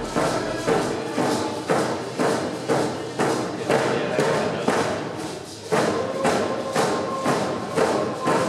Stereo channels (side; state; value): both; identical; correlation 1.00